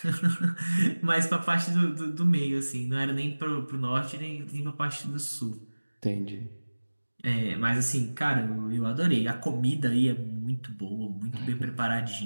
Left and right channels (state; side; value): inverted; both; correlation -1.00